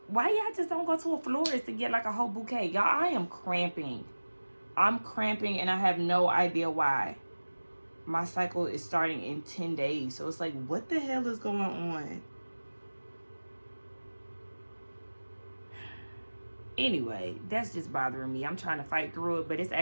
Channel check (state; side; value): inverted; both; correlation -1.00